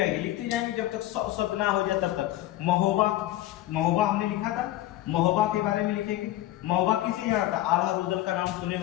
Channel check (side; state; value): right; quieter; 14.8 dB